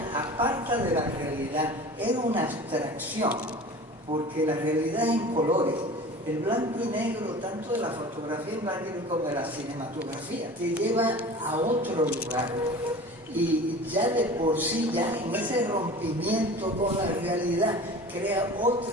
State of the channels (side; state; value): both; normal; correlation 0.39